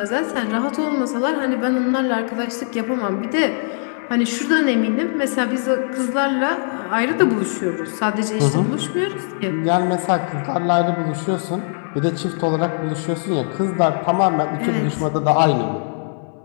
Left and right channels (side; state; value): right; silent; 65 dB below the other